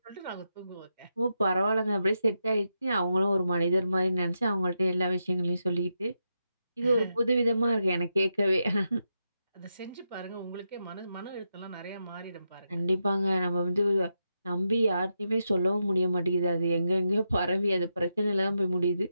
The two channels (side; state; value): both; inverted; correlation -0.86